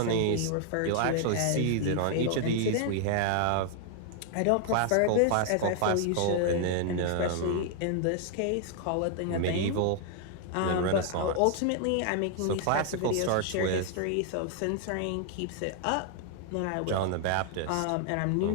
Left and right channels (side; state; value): both; different; correlation 0.00